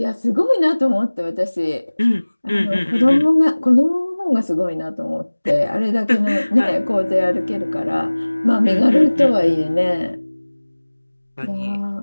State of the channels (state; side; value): inverted; both; correlation -1.00